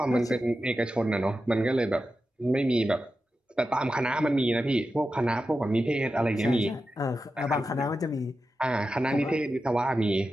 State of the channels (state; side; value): normal; both; correlation 0.91